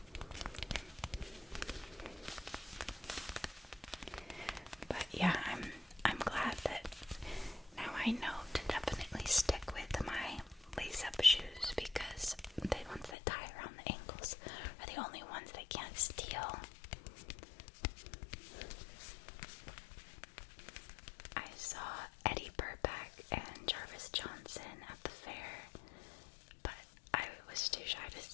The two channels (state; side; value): drops out; right; at 13.2 s